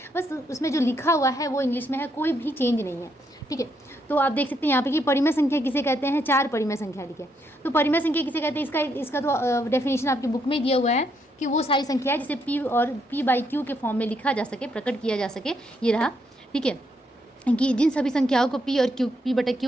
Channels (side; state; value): both; normal; correlation 0.76